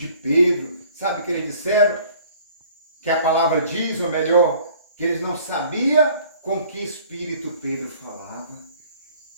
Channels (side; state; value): both; inverted; correlation -0.53